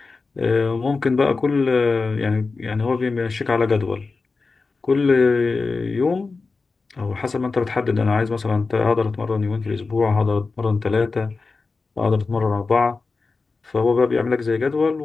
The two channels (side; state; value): right; quieter; 4.1 dB